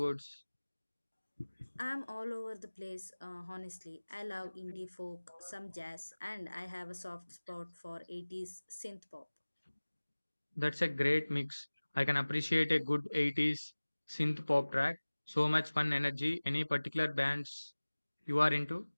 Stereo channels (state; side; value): inverted; both; correlation -1.00